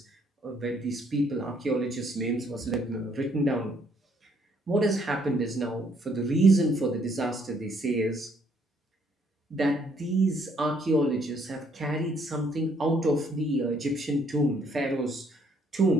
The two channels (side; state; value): both; normal; correlation 0.67